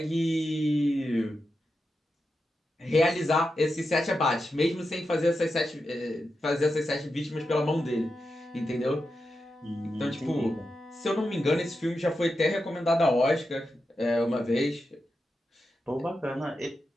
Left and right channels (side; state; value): both; normal; correlation 0.89